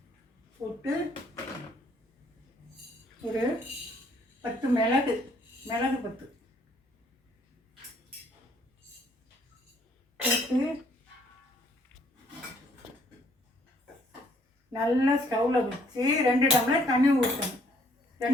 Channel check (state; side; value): normal; both; correlation 0.64